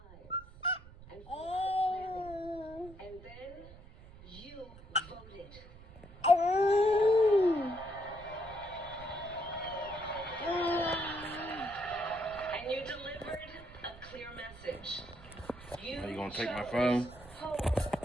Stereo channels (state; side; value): noise; right; rumble, 18 dB below the sound